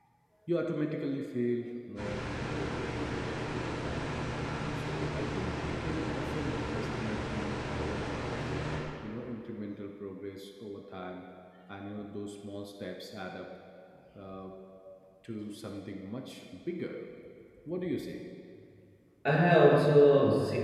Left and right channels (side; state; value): both; identical; correlation 1.00